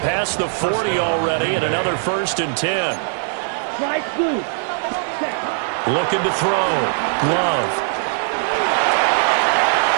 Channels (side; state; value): left; silent; 66 dB below the other